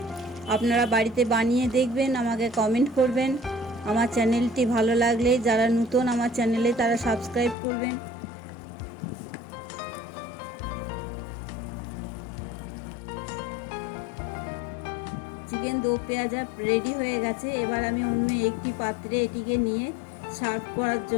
আপনারা বাড়িতে বানিয়ে দেখবেন, আমাকে কমেন্ট করবেন। আমার চ্যানেলটি ভালো লাগলে যারা নতুন আমার চ্যানেলে তারা সাবস্ক্রাইব করবেন। চিকেন দো পেঁয়াজা রেডি হয়ে গেছে। এবার আমি অন্য একটি পাত্রে এটিকে নিয়ে সার্ভ করার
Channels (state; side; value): drops out; right; at 7.6 s